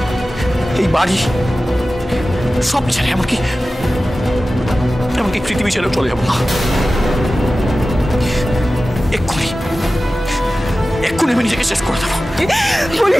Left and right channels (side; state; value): both; normal; correlation 0.95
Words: এই বাড়ি সব ছেড়ে এমনকি পৃথিবী ছেড়ে চলে যাবো না। এক্ষুনি আমি নিজেকে শেষ করে দেবো।